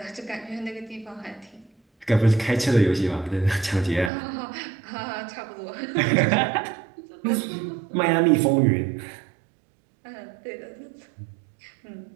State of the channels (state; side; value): drops out; left; at 4.1 s